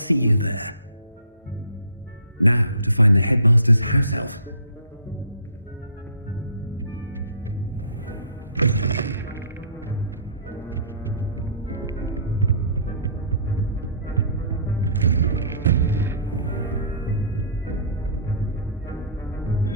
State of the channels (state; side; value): inverted; both; correlation -0.48